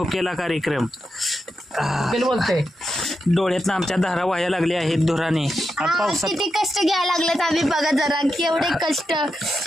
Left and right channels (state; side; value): normal; both; correlation 0.87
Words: कार्यक्रम. बोलते डोळ्यात आमच्या धारा व्हायला लागल्या आहेत धुराने. पावसात किती कष्ट घ्यायला लागलेत आम्ही बघा जरा केवढे कष्ट